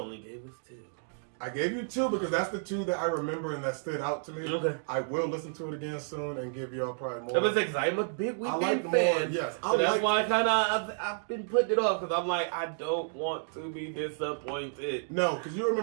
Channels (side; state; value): left; silent; digital silence